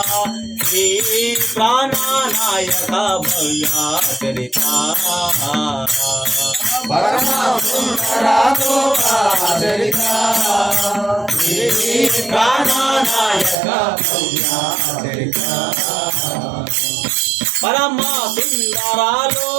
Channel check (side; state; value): left; drops out; at 13.6 s